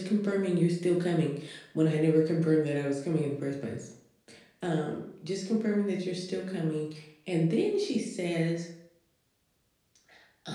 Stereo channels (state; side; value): identical; both; correlation 1.00